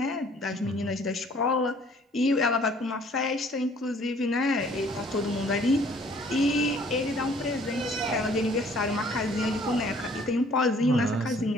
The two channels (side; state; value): both; normal; correlation 0.57